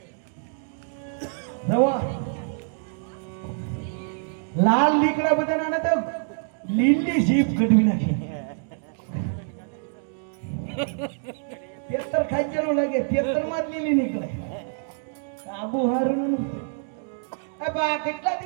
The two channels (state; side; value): silent; left; digital silence